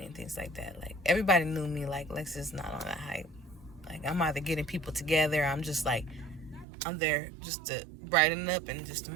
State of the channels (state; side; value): drops out; left; at 6.7 s